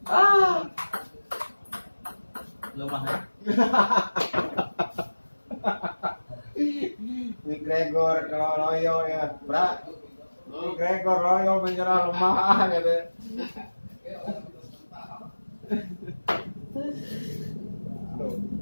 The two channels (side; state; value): both; inverted; correlation -1.00